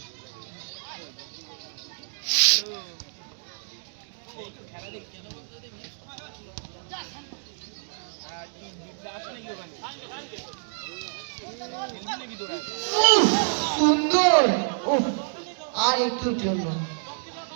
সুন্দর, আর একটু জন্য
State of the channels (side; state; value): left; silent; digital silence